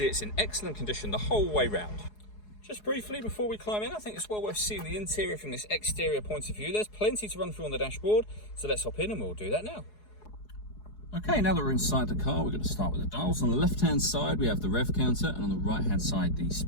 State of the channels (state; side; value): late; right; 4.8 ms